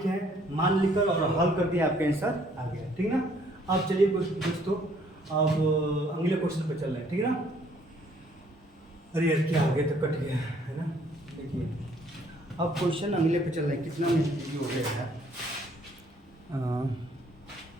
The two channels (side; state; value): both; normal; correlation 0.63